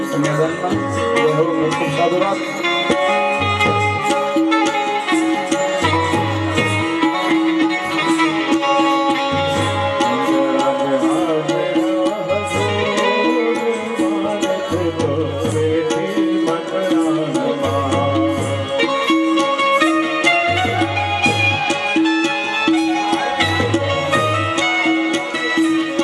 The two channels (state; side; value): identical; both; correlation 1.00